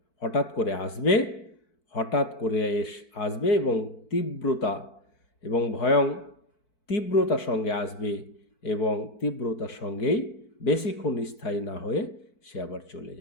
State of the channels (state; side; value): late; right; 4.6 ms